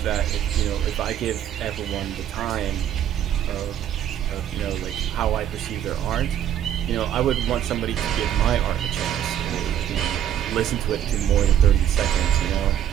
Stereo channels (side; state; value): left; quieter; 10.5 dB